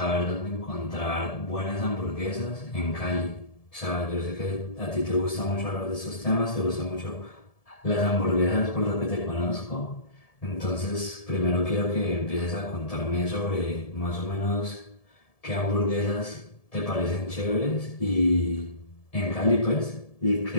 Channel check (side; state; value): right; late; 1.7 ms